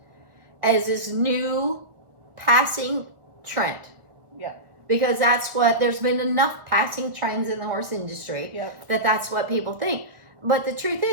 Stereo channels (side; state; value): left; late; 1.4 ms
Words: as this new passing trend. Yeah. Because there's been enough passing trends in the horse industry that's what people think. But the truth